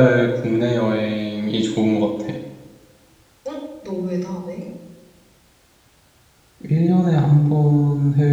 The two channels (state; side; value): identical; both; correlation 1.00